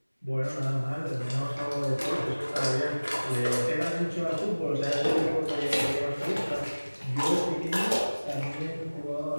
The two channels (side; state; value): both; inverted; correlation -1.00